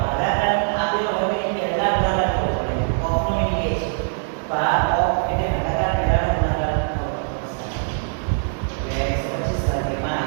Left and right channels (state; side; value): silent; left; 64 dB below the other